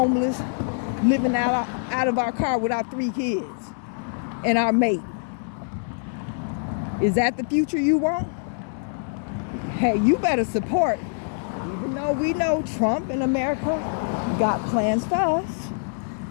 living out of our car with our 3 kids and our mate. Is that the future you want? Hey, you better support. Even though we know Trump and America got plans for us,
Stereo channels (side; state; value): right; silent; 62 dB below the other